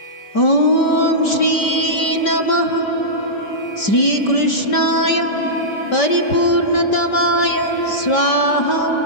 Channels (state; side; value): late; right; 5.2 ms